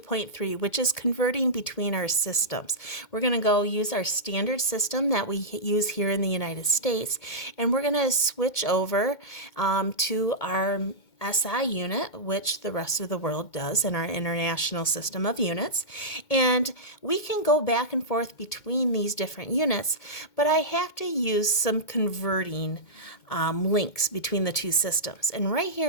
which is converting between our systems. We're going to go use our standard system that we use here in the United States, and we're going to switch over to our SI unit, which the rest of the world does in our international system of units. And we can go back and forth between these different units, but I have to use some converting links between the two systems. And right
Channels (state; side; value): late; right; 2.1 ms